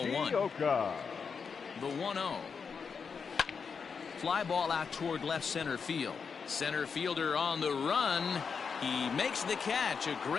1. The 1-0. Fly ball out toward left center field. Center fielder on the run. He makes the catch. A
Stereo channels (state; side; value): quieter; right; 5.9 dB